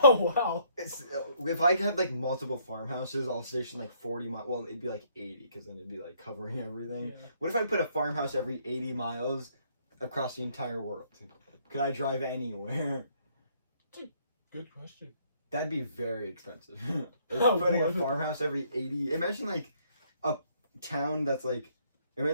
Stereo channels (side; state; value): both; inverted; correlation -0.66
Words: Oh, wow. If I had like multiple farmhouses, I'll station like 40 miles. Well, it'd be like 80 because then it'd be like covering everything. Yeah. What if I put a farmhouse every 80 miles across the entire world? Could I drive anywhere? Good question. That'd be very expensive. Oh, Putting a boy. farmhouse every 80. Imagine like a town that's like.